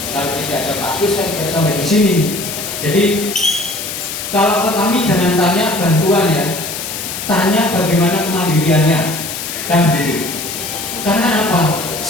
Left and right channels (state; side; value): noise; left; hiss, 6 dB below the sound